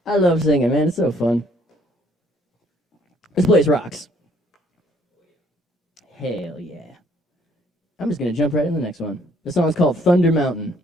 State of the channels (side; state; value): both; normal; correlation 0.64